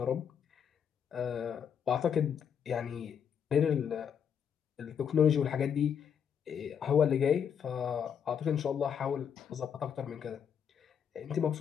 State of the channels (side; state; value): right; quieter; 7.8 dB